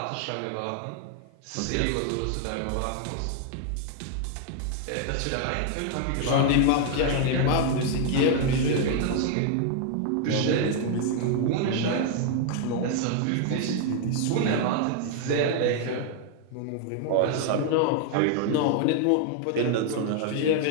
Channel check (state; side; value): different; both; correlation 0.00